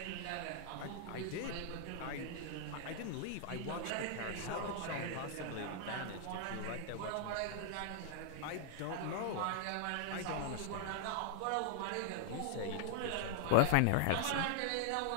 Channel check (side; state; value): both; different; correlation -0.01